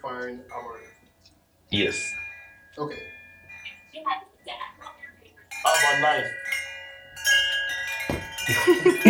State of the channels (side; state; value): both; identical; correlation 1.00